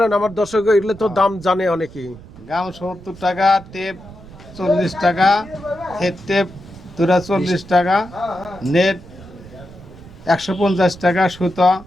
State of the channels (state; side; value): noise; right; rumble, 19 dB below the sound